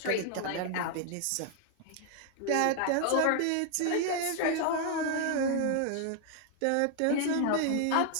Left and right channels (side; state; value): both; different; correlation 0.00